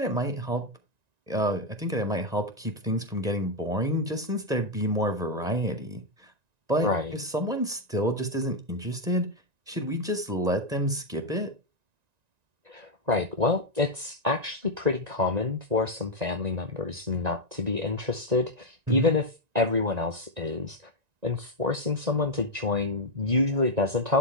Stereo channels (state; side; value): late; left; 1.9 ms